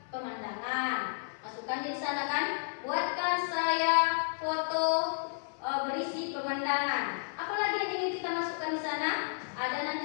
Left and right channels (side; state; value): right; silent; 56 dB below the other